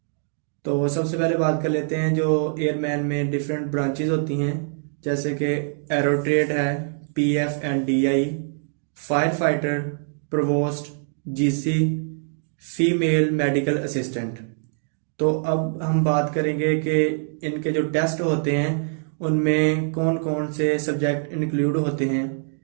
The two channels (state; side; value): silent; left; digital silence